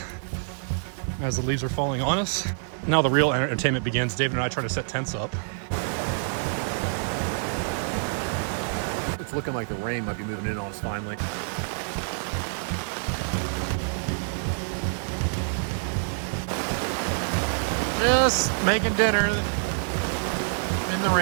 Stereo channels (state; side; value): silent; left; 60 dB below the other